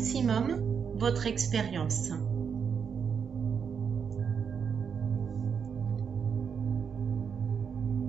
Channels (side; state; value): left; quieter; 6.7 dB